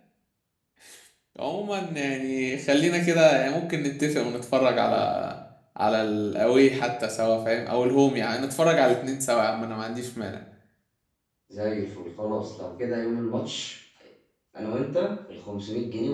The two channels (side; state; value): both; identical; correlation 1.00